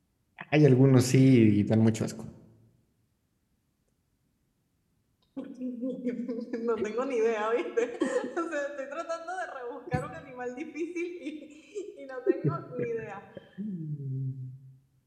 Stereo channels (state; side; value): identical; both; correlation 1.00